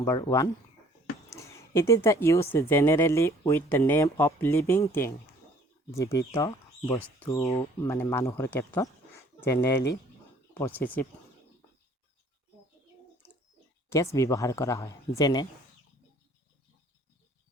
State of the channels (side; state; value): both; normal; correlation 0.57